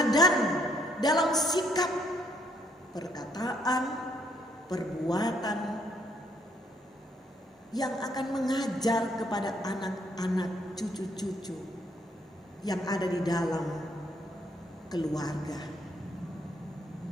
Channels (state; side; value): normal; both; correlation 0.69